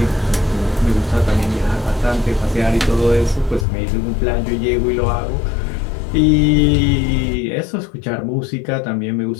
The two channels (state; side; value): drops out; right; at 3.7 s